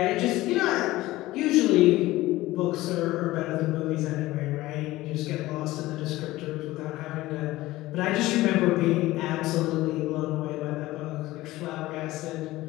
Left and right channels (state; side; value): quieter; right; 17.7 dB